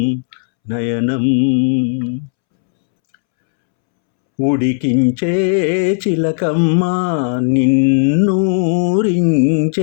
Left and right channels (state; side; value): silent; right; 70 dB below the other